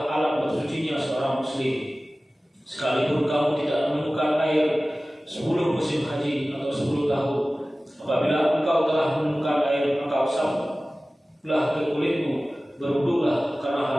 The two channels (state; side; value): normal; both; correlation 0.97